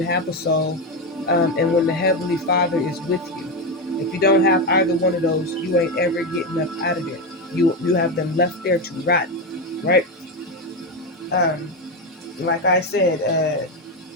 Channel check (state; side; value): normal; both; correlation 0.12